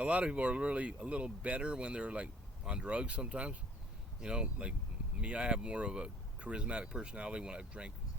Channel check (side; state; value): both; normal; correlation 0.54